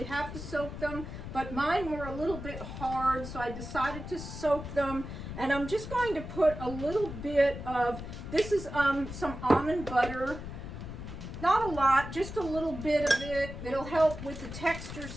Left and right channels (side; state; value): left; noise; rumble, 9 dB below the sound